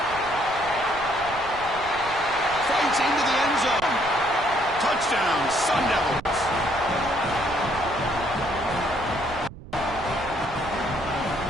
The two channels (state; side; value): noise; right; rumble, 16 dB below the sound